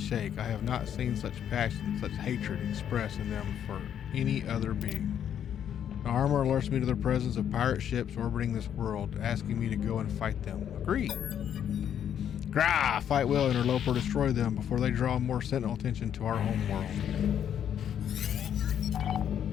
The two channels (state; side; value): quieter; right; 9.3 dB